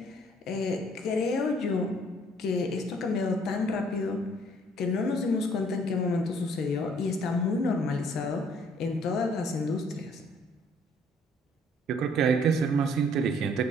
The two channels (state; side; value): normal; both; correlation 0.61